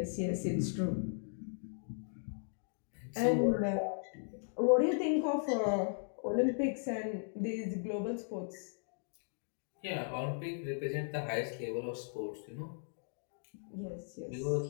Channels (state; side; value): silent; right; digital silence